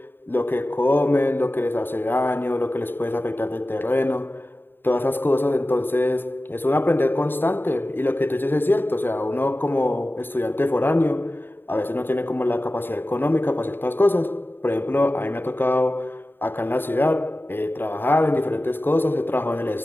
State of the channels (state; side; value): late; right; 0.099 ms